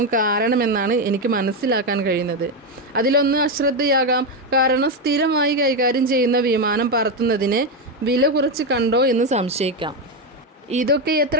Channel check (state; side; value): normal; both; correlation 0.09